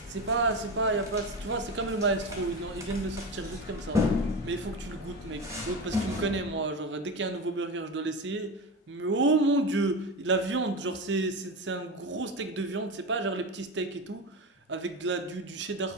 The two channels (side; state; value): both; normal; correlation 0.22